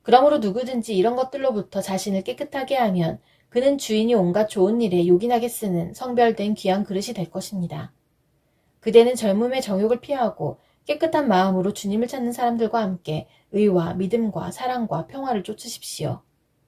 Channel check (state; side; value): identical; both; correlation 1.00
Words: 그러므로 누구든지 이런 것들로부터 자신을 깨끗하게 하면 그는 주인이 온갖 좋은 일에 요긴하게 쓰는 성별된 귀한 그릇이 될 것입니다. 그대는 젊음의 정욕을 피하고 깨끗한 마음으로 주님을 찾는 사람들과 함께 의와 믿음과 사랑과 평화를 쫓으십시오.